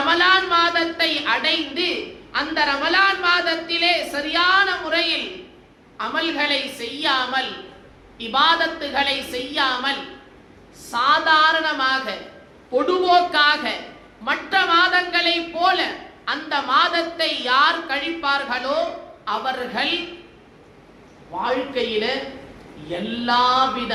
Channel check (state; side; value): identical; both; correlation 1.00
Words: மாதத்தை அடைந்து அந்த ரமலான் மாதத்திலே சரியான முறையில் அமல்களை செய்யாமல், இபாதத்துகளை செய்யாமல், சாதாரணமாக பொதுவோக்காக மற்ற மாதங்களை போல அந்த மாதத்தை யார் கழிப்பார்களோ அவர்கள் வாழ்க்கையில எல்லாவித